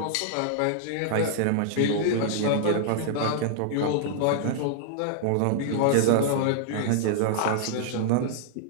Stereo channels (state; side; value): different; both; correlation -0.01